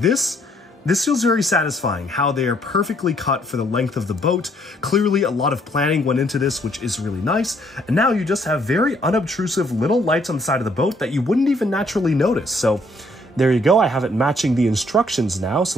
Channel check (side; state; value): both; normal; correlation 0.66